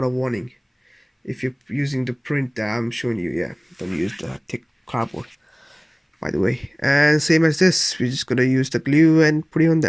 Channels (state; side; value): identical; both; correlation 1.00